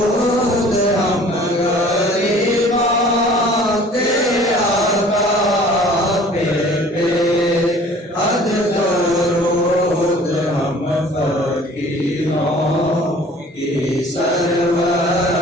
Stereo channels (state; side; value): normal; both; correlation 0.50